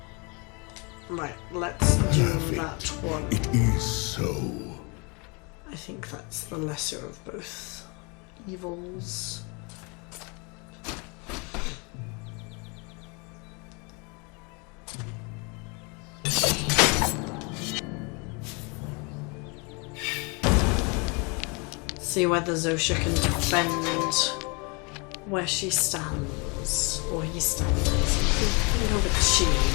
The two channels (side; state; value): right; quieter; 31.3 dB